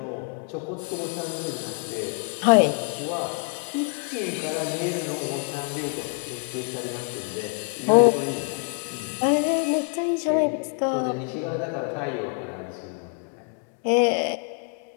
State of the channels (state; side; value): quieter; right; 36.9 dB